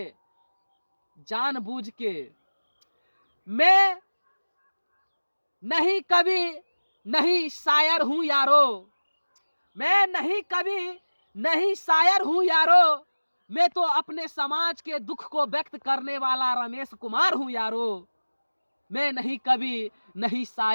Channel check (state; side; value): inverted; both; correlation -1.00